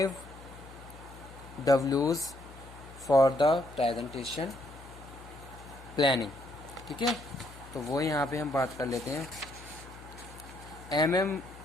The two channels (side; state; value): left; noise; hum, 17 dB below the sound